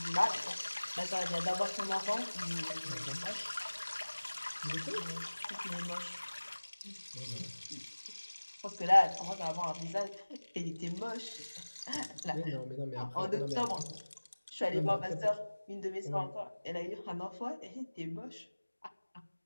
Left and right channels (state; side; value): inverted; both; correlation -1.00